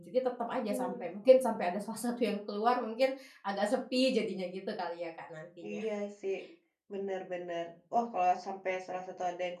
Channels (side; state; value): both; identical; correlation 1.00